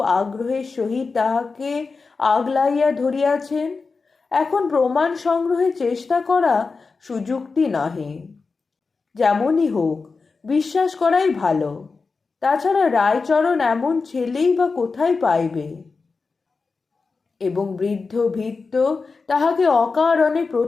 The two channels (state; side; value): quieter; right; 4.4 dB